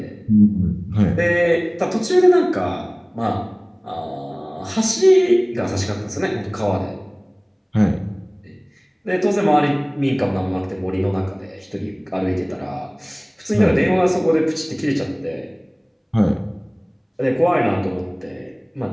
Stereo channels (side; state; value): both; identical; correlation 1.00